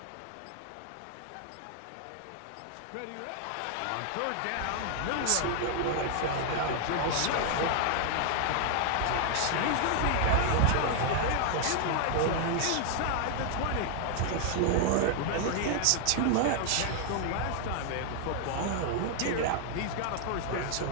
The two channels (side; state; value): both; different; correlation 0.00